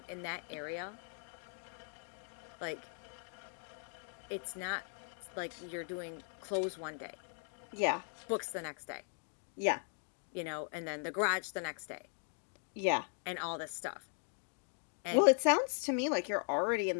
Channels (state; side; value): silent; right; 52 dB below the other